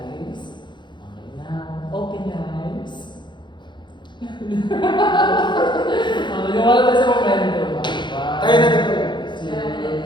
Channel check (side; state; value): right; late; 0.22 ms